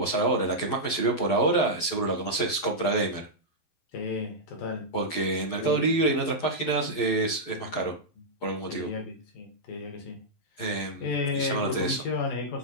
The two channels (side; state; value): right; late; 11 ms